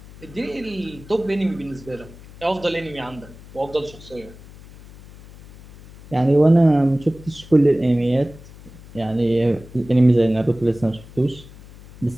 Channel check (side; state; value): left; noise; hum, 20 dB below the sound